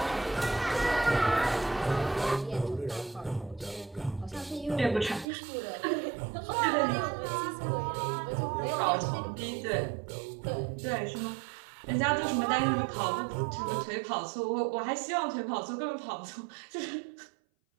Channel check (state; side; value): drops out; left; at 5.2 s